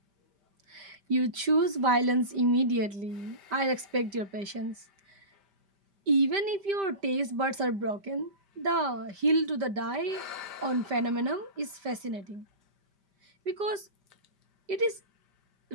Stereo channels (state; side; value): late; left; 5.1 ms